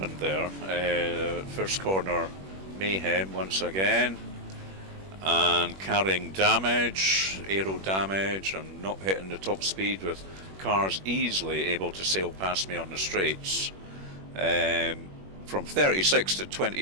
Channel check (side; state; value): left; late; 21 ms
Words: there, first corner mayhem once again, and carrying damage, aero damage, and not hitting the top speed with cars easily able to sail past me on the straights. From 36 to